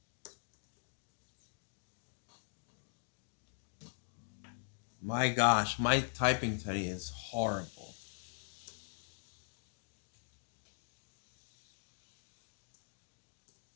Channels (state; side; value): silent; right; digital silence